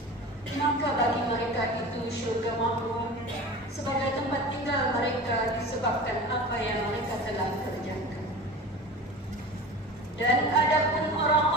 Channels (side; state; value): both; normal; correlation 0.34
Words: maka bagi mereka itu syurga makmur sebagai tempat tinggal mereka disebabkan apa yang mereka telah kerjakan. Dan adapun